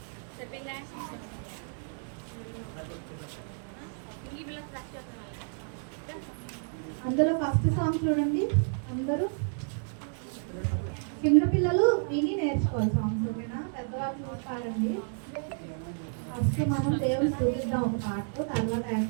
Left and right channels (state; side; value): silent; left; 57 dB below the other